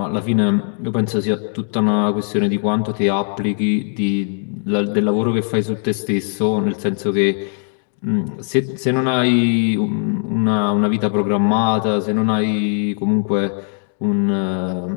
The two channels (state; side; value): silent; right; 61 dB below the other